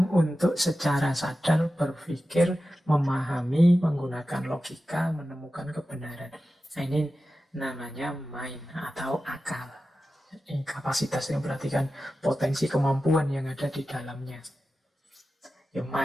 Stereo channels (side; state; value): both; normal; correlation 0.93